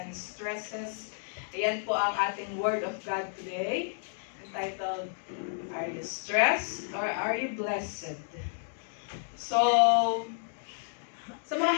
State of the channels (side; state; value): right; silent; digital silence